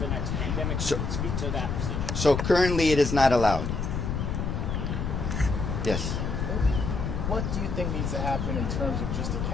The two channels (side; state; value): left; noise; rumble, 2 dB below the sound